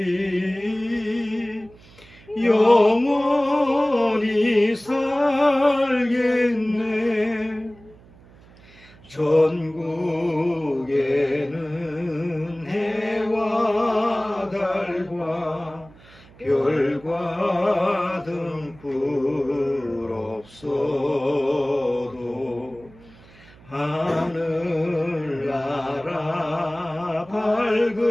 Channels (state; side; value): noise; right; hum, 24 dB below the sound